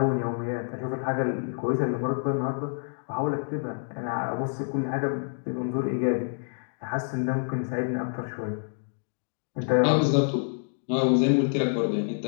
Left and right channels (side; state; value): right; silent; digital silence